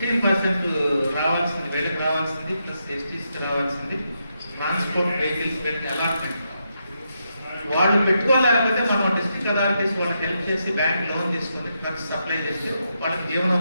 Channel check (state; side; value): inverted; both; correlation -0.82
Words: రావాల్సింది, వేడికి రావాల్సింది, ప్లస్ ఎస్టీస్కి రావాల్సింది, ట్రాన్స్పోర్ట్ వెహికల్స్ పెట్టి అలాట్మెంట్. వాళ్ళు పెట్టుకోలేకపోతే మనం డిస్ట్రిక్ట్ అథారిటీస్ వాళ్ళకి హెల్ప్ చేసి బ్యాంక్ లోన్ తీసుకొని ట్రక్స్ సప్లై చేసి వాళ్ళకి